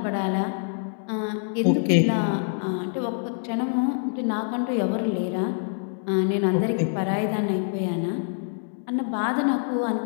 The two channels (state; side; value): silent; right; digital silence